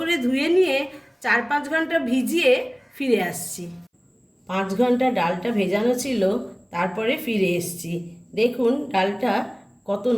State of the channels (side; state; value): both; identical; correlation 1.00